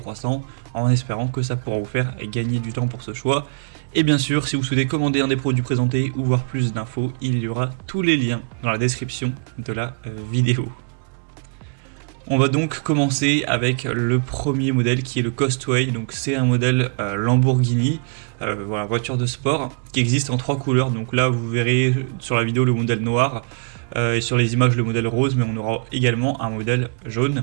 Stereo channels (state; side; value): quieter; left; 37.7 dB